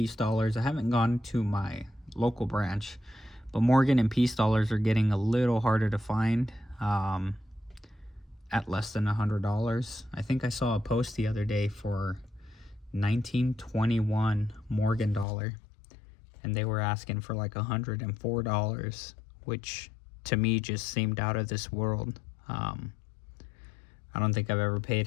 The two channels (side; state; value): right; drops out; at 15.2 s